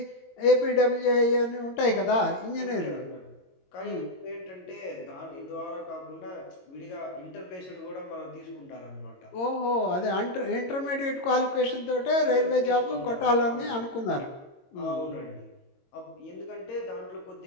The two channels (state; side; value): late; right; 22 ms